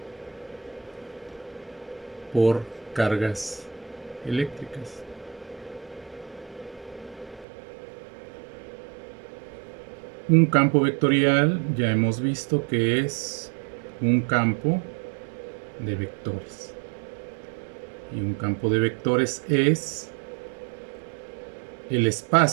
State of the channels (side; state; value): left; drops out; at 7.5 s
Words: por cargas eléctricas. Un campo vectorial ya hemos visto que es un campo de vectores. Y un campo de vectores es el